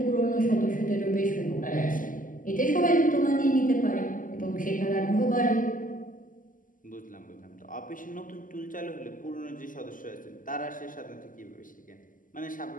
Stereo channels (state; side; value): late; right; 0.38 ms